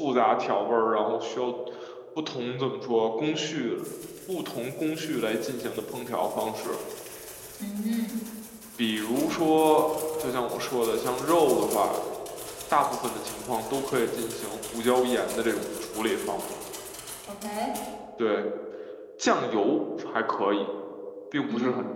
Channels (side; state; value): both; identical; correlation 1.00